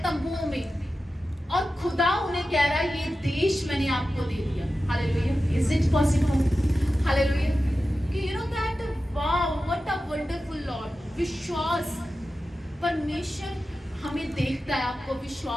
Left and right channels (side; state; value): both; normal; correlation 0.93